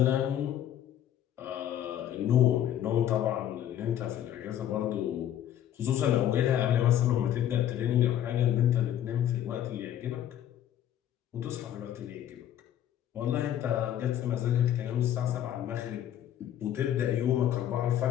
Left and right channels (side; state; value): right; quieter; 11.0 dB